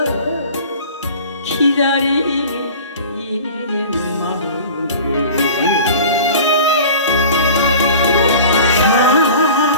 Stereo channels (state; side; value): inverted; both; correlation -0.41